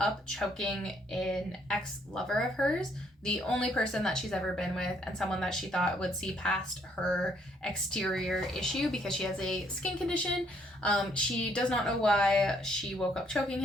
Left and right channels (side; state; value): both; normal; correlation 0.68